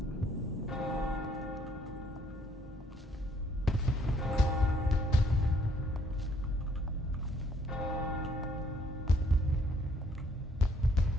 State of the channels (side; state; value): both; normal; correlation 0.66